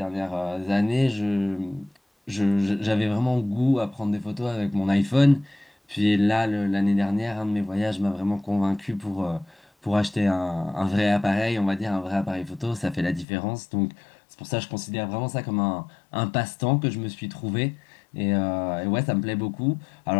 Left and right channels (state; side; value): drops out; right; at 13.2 s